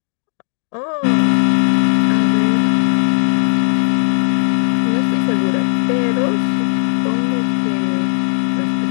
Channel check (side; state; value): right; silent; 69 dB below the other